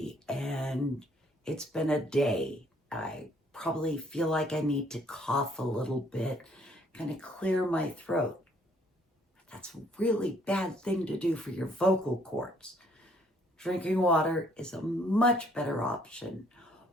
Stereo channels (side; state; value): both; normal; correlation 0.64